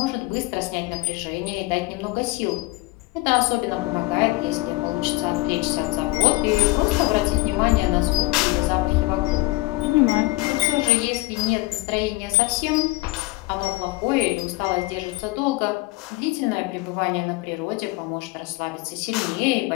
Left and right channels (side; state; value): right; quieter; 21.3 dB